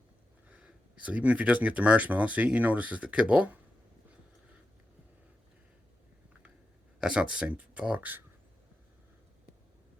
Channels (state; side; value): normal; both; correlation 0.89